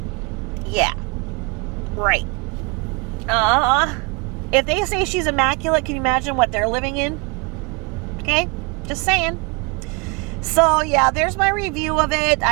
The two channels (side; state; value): left; quieter; 30.7 dB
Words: Yeah. Right. If they say she's immaculate, can you imagine what they're living in? Okay? Just saying. So, yeah, there's my review of it.